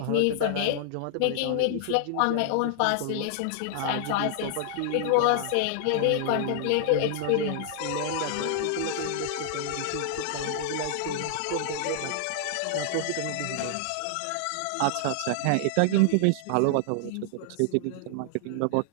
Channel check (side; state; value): both; different; correlation -0.01